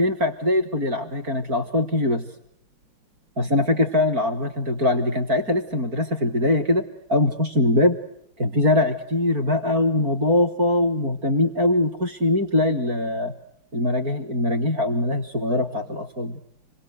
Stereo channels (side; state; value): left; late; 4.4 ms